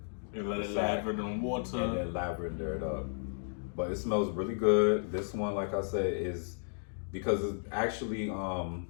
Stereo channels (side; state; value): right; silent; digital silence